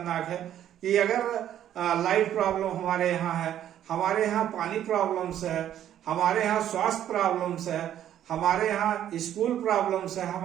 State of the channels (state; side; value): quieter; left; 11.0 dB